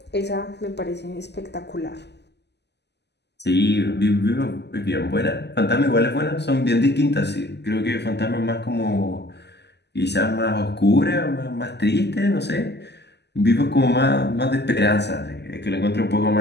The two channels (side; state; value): right; late; 0.50 ms